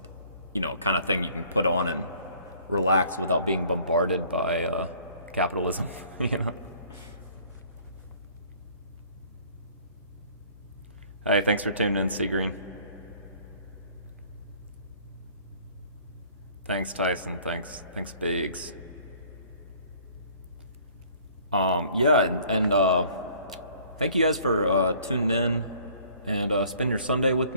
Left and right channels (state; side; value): inverted; both; correlation -0.56